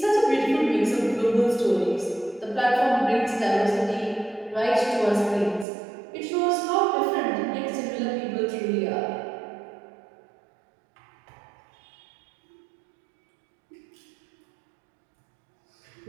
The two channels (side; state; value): left; drops out; at 5.7 s